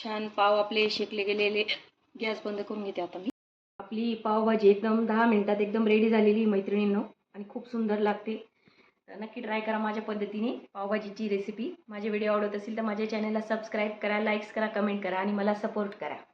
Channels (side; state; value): both; identical; correlation 1.00